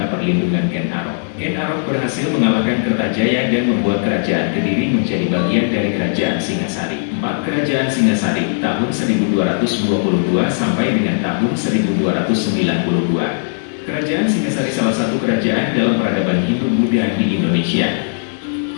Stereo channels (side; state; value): right; silent; digital silence